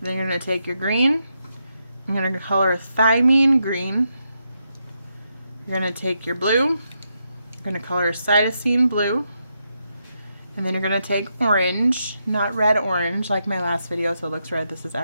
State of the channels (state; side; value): inverted; both; correlation -0.83